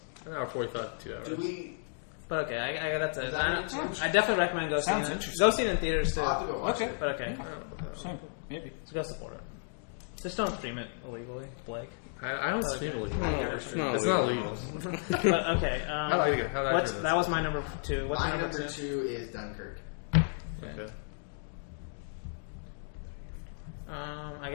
An hour 45 to 2 hours. Do we? But okay, I that's it. Is that what I definitely recommend go seeing Sounds it. interesting. Go see it in theaters too. I'll have to go watch Okay. it. But okay, Same. Maybe. so go support it. Just don't stream it illegally, Blake. I don't stream illegal. it's not It's not illegal. legal. But okay, How do I turn this? that was my number 2. What's My your number number 2? 2 is Dunkirk. Okay. I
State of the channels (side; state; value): right; silent; digital silence